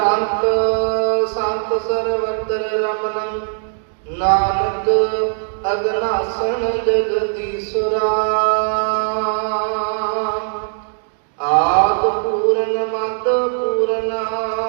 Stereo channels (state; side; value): silent; left; digital silence